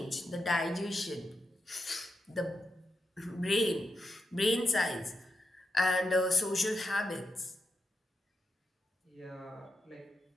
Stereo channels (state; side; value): normal; both; correlation 0.87